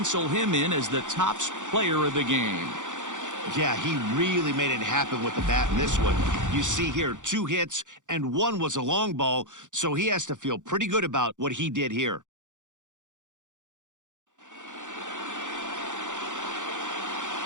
him in as the top player of the game. Yeah, he really made it happen with the bat in this one. You see here, 2 hits, and 1 was a long ball, so he has to feel pretty good about what he did here.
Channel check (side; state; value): left; late; 0.86 ms